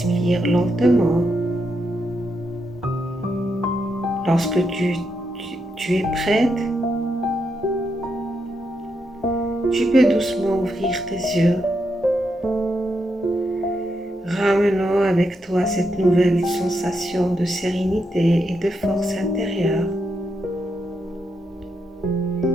lentement. Lorsque tu es prête, tu peux doucement ouvrir tes yeux, ramenant avec toi cette nouvelle sensation de sérénité et de force intérieure.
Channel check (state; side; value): normal; both; correlation 0.82